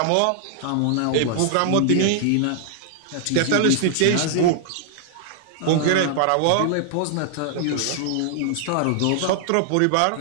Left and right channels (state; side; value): different; both; correlation -0.01